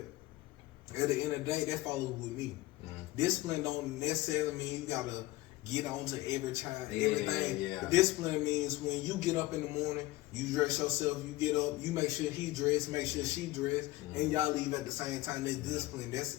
At the end of the day, that follows with me. Discipline don't necessarily mean you gotta get on to everything. Yeah. Discipline means when you get up in the morning, you dress yourself, you get up, you make sure he dressed, make sure she dressed, and y'all leave at the same time. That's discipline. That's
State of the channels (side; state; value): right; quieter; 18.1 dB